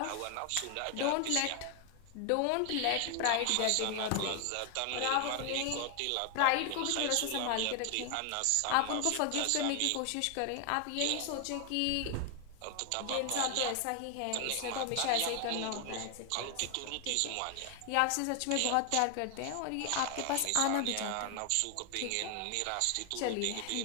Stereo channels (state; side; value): different; both; correlation 0.00